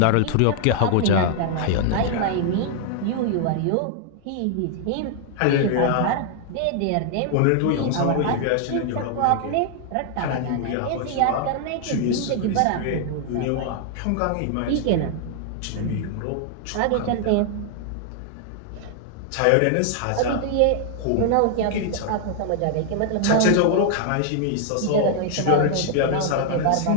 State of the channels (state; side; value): different; both; correlation 0.00